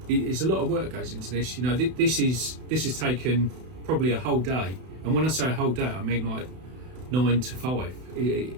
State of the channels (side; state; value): left; late; 32 ms